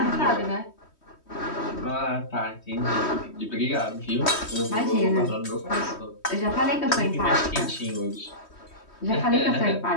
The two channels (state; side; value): late; right; 3.2 ms